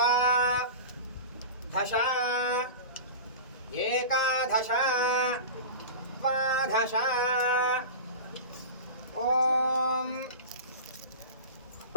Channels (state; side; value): inverted; both; correlation -0.30